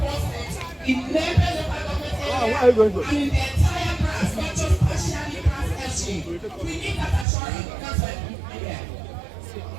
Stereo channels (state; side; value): drops out; left; at 7.2 s